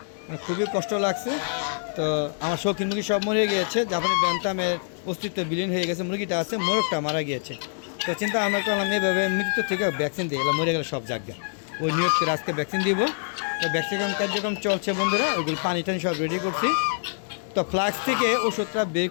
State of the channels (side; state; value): right; silent; digital silence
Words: খুবই কষ্ট লাগছে। তো আমার শৌখিন মুরগি সব মরে গিয়েছে, জাপানি ব্যান্থামের অস্তিত্ব বিলীন হয়ে গেছে। মুরগিটা আছে, মোরগটা মারা গিয়েছে। তো চিন্তা আমরা করলাম এইভাবে মৃত্যু থেকে ভ্যাকসিন দিয়ে গেলাম, মরে গেলে সব জায়গা ওই নিয়োগ করে আজকে ভ্যাকসিন দিব। তো ভ্যাকসিন কার্যক্রম চলছে বন্ধুরা, ওইগুলো পানি টানি সব রেডি করছি। তো ফ্লাক্স থেকে ওষুধটা বের